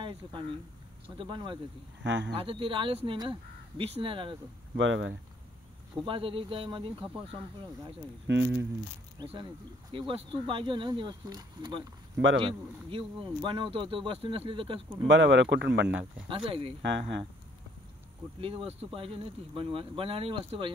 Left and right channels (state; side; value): normal; both; correlation 0.63